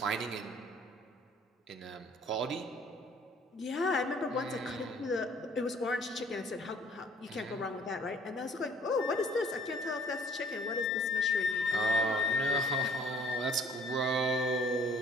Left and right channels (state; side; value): normal; both; correlation 0.56